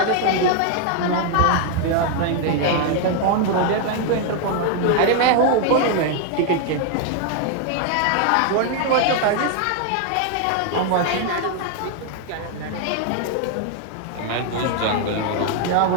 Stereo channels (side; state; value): both; different; correlation 0.00